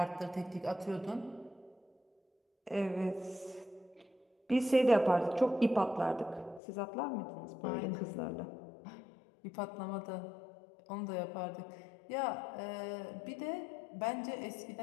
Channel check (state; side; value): drops out; right; at 6.6 s